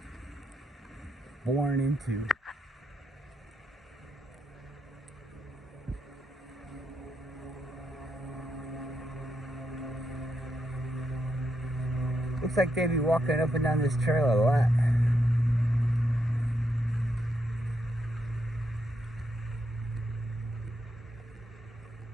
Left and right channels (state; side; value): normal; both; correlation 0.81